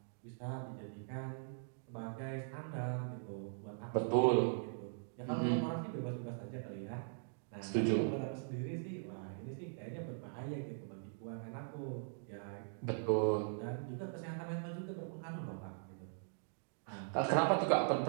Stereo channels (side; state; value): left; silent; digital silence